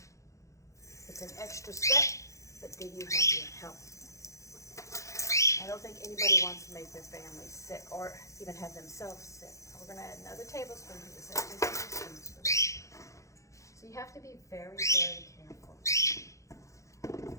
It's an extra step, but then you have your help. I don't think anybody wants to make their family sick or even have themselves sick. We're going to add another tablespoon to this. 2 tablespoons for this. So you have to be very, very careful.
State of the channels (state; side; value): late; right; 0.15 ms